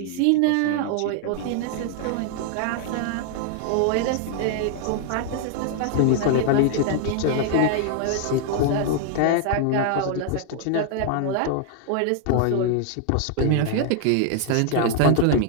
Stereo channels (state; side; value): different; both; correlation 0.00